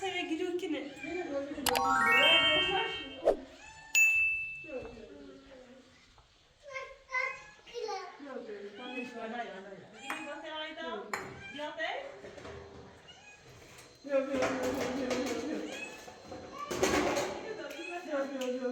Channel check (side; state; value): both; identical; correlation 1.00